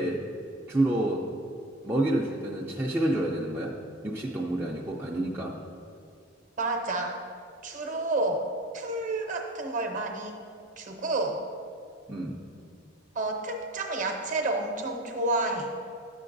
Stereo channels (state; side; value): normal; both; correlation 0.34